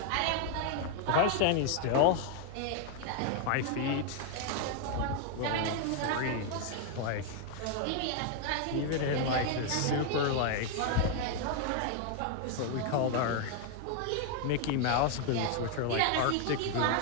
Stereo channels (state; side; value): different; both; correlation 0.00